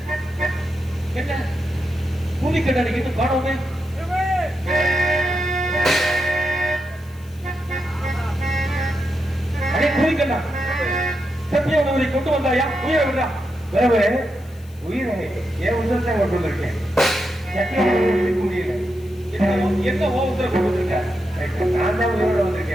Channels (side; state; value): left; noise; hiss, 27 dB below the sound